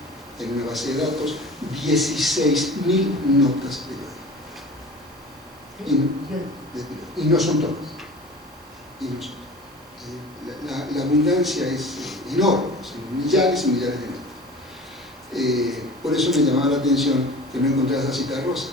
en una base de datos 16.000 notas periódicas. Y no son todas. La abundancia es enorme, son millares y millares de notas. Por eso me llamaba la atención que no encontrara esa Cita Rosa,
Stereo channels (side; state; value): both; normal; correlation 0.40